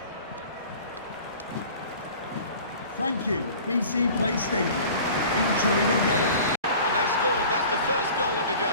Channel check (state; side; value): inverted; both; correlation -0.43